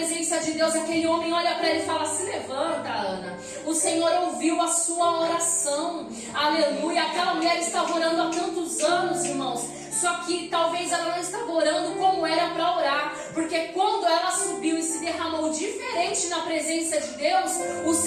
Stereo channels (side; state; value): both; identical; correlation 1.00